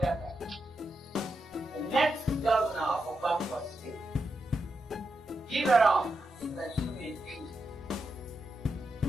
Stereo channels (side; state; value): both; normal; correlation 0.86